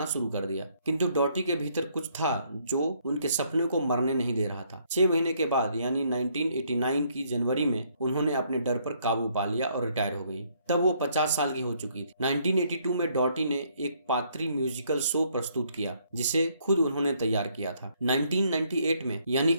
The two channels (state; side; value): inverted; both; correlation -0.68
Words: शुरू कर दिया। किंतु डॉटी के भीतर कुछ था जो उनके सपने को मरने नहीं दे रहा था। 6 महीने के बाद यानी 1989 की जनवरी में उन्होंने अपने डर पर काबू पा लिया और रिटायर हो गई। तब वो 50 साल की हो चुकी थी। 1982 में डॉटी ने एक पात्री म्यूजिकल शो प्रस्तुत किया जिसे खुद उन्होंने तैयार किया था। 1998 में यानी